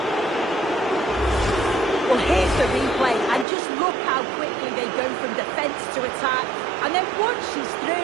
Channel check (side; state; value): left; drops out; at 3.5 s